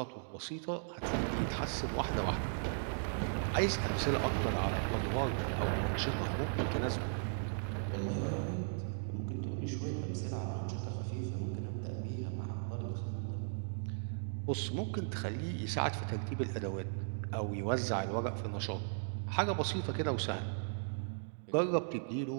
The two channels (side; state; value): left; silent; digital silence